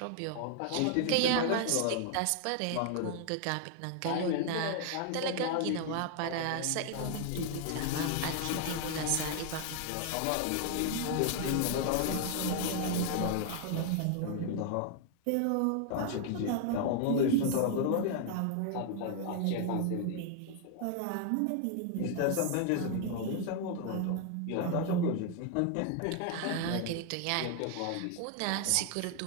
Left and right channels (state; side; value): different; both; correlation 0.00